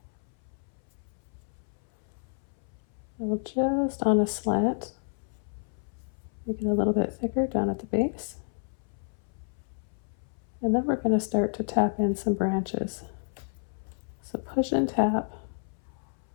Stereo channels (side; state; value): right; silent; 58 dB below the other